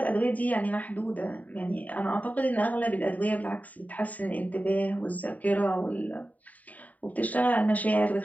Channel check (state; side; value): late; right; 0.073 ms